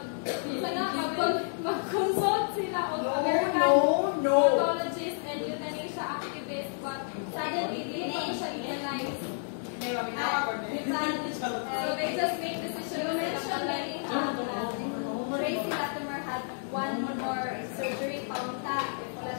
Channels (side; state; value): right; silent; digital silence